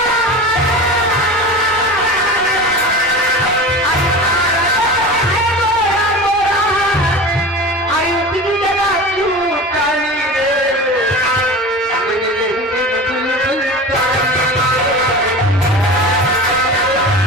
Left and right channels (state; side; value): normal; both; correlation 0.33